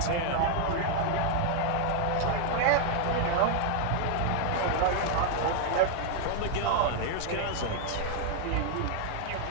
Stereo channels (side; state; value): both; different; correlation 0.00